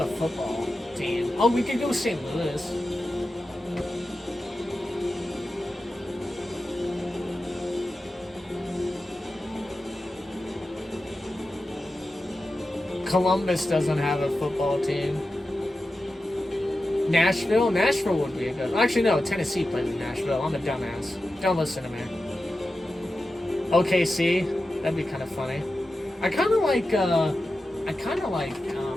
football team? Oh, we could go St. Louis. Columbus doesn't have a football team. Nashville? Nashville would be a good... Actually, no. Tennessee plays in Nashville. I'm a dumbass. Don't listen to me. OKC? That'd be kind of funny. I kind of like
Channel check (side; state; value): both; normal; correlation 0.92